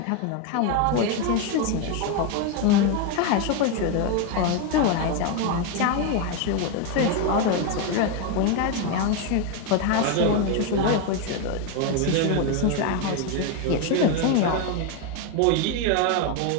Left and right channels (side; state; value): both; different; correlation 0.02